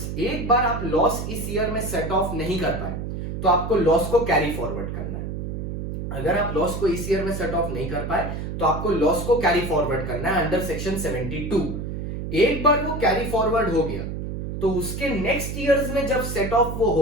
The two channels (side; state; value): right; noise; hum, 5 dB below the sound